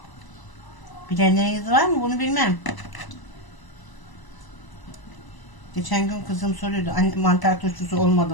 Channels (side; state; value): right; late; 1.0 ms